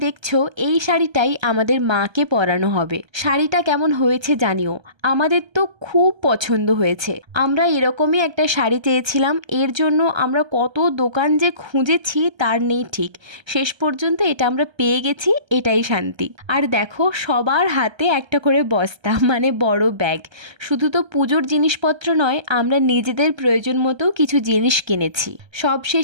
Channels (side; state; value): left; late; 1.3 ms